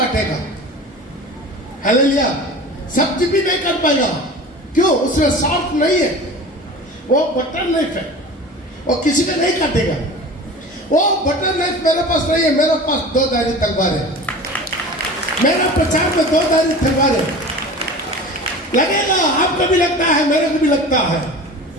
हालेलुया। सब्जी भी नहीं कर पाएगा, क्यों? उसमें सॉफ्ट नहीं है, वो बटर नाइफ है, वो किसी का नहीं काटेगा। वो बटर नाइफ मेरे पास नहीं है, मेरे पास दो धारी तलवार है। मेरा प्रचार में दो धारी तलवार है। लगेगा, आपको भी लगता है, मेरे को भी लगता है,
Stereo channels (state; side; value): normal; both; correlation 0.37